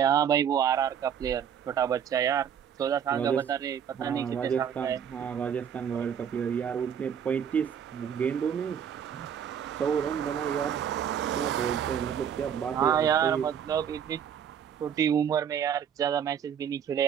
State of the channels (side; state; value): left; quieter; 8.4 dB